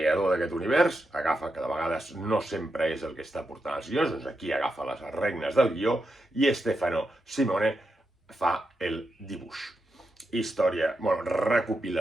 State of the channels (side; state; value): both; normal; correlation 0.86